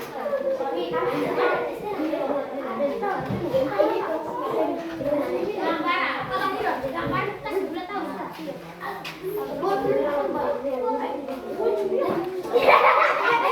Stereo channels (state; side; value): identical; both; correlation 1.00